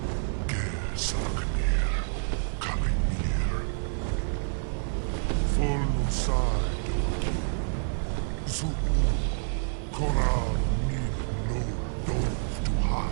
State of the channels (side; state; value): left; silent; 55 dB below the other